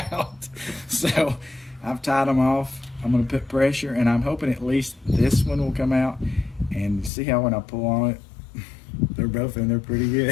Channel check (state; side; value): drops out; right; at 7.1 s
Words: out. So I've tied them off. I'm gonna put pressure, and I'm hoping at least this one will come out. And see how when I pull on it, they're both in there pretty